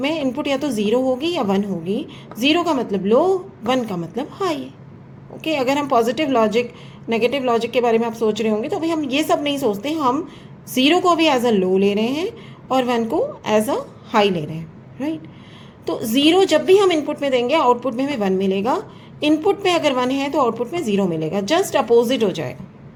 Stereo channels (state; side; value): identical; both; correlation 1.00